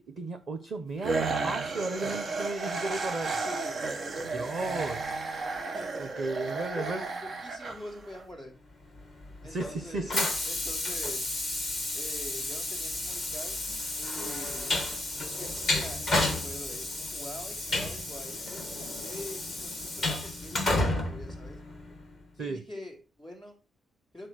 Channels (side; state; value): both; normal; correlation 0.77